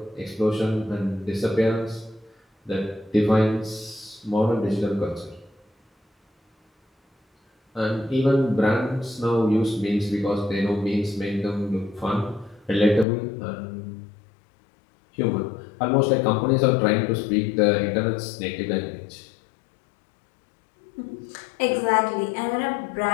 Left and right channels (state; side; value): drops out; right; at 13.1 s